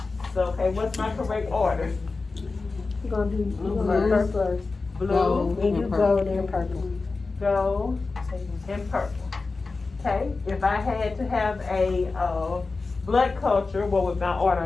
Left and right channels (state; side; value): quieter; right; 3.9 dB